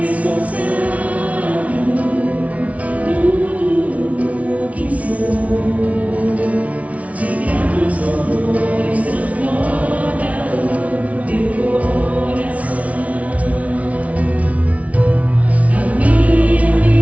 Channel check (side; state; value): left; late; 0.067 ms